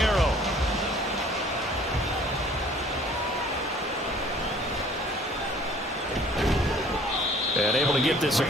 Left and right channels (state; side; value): normal; both; correlation 0.54